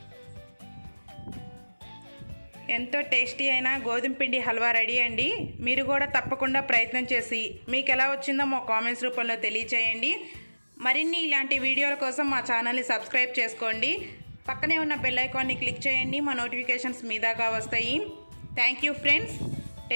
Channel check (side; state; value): both; inverted; correlation -1.00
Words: ఎంతో టేస్టీ అయిన గోధుమ పిండి హల్వా రెడీ అండి. మీరు కూడా తప్పకుండా ప్రయత్నం చేసి మీకు ఎలా వచ్చిందో మా కామెంట్స్ రూపంలో తెలియచేయండి. మరిన్ని ఇలాంటి వీడియోల కోసం మా ఛానల్ని సబ్స్క్రైబ్ చేసుకోండి. పక్కనే ఉన్న బెల్ ఐకాన్ని క్లిక్ చేయండి. మా నోటిఫికేషన్స్ మీ దాకా వస్తాయి. Thank you friends,